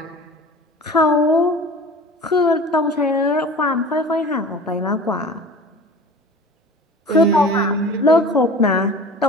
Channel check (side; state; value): both; normal; correlation 0.39